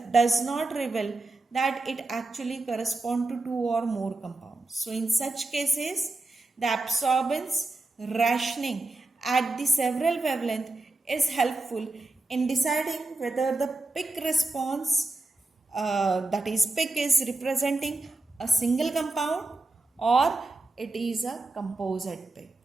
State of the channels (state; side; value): quieter; left; 3.1 dB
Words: does not reveal that it actually corresponds to two or more compounds. So in such cases, the absorbance rationing at the several wavelength is helpful in deciding whether the peak response, that is peak, is representing a single compound or it is a composite peak.